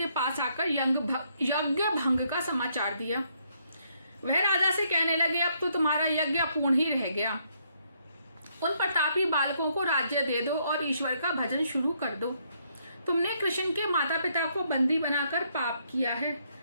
पास आकर यज्ञ भंग का समाचार दिया। वह राजा से कहने लगे, अब तो तुम्हारा यज्ञ अपूर्ण ही रह गया। उन प्रतापी बालकों को राज्य दे दो और ईश्वर का भजन शुरू कर दो। तुमने कृष्ण के माता पिता को बंदी बनाकर पाप किया है,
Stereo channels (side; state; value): both; inverted; correlation -0.72